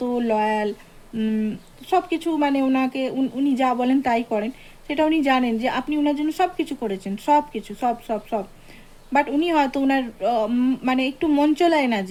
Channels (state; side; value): identical; both; correlation 1.00